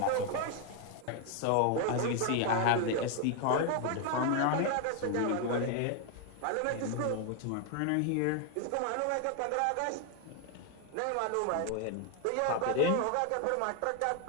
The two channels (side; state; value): both; different; correlation 0.01